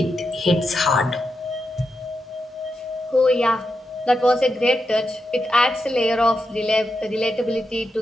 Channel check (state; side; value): normal; both; correlation 0.86